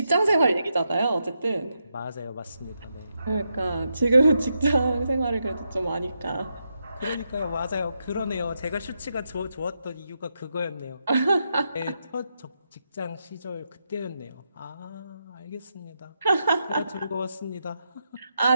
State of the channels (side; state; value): both; inverted; correlation -0.84